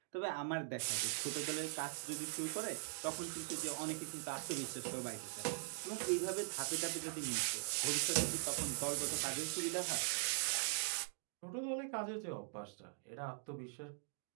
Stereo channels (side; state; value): left; silent; digital silence